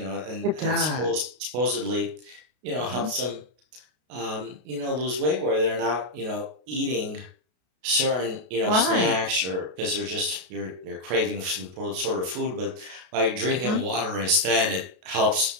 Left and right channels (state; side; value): late; left; 33 ms